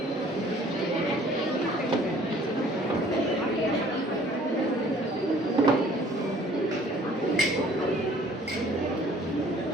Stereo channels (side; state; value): both; normal; correlation 0.55